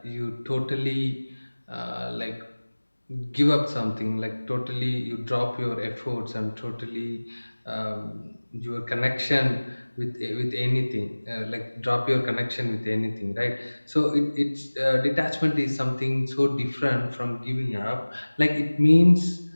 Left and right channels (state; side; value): inverted; both; correlation -1.00